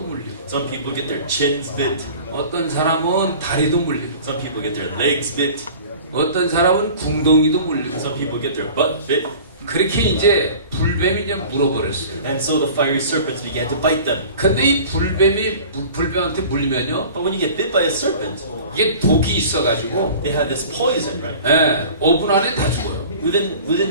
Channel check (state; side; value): inverted; both; correlation -0.42